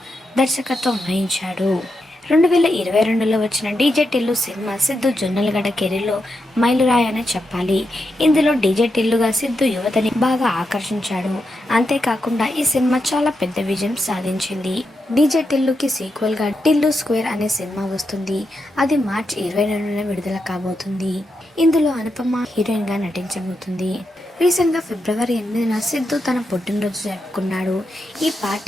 దర్శకత్వం వహించాడు. 2022లో వచ్చిన డీజే టిల్లు సినిమా సిద్ధు జొన్నలగడ్డ కెరీర్లో మైలురాయి అని చెప్పాలి. ఇందులో డీజే టిల్లుగా సిద్ధు యువతని బాగా ఆకర్షించాడు. అంతేకాకుండా ఈ సినిమా చాలా పెద్ద విజయం సాధించింది. డీజే టిల్లుకి సీక్వెల్గా టిల్లు స్క్వేర్ అనే సినిమా వస్తుంది. అది మార్చి 22న విడుదల కాబోతుంది. ఇందులో అనుపమ హీరోయిన్గా నటించబోతుంది. రీసెంట్గా ఫిబ్రవరి 8న సిద్ధు తన పుట్టినరోజు జరుపుకున్నాడు. ఈ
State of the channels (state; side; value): normal; both; correlation 0.85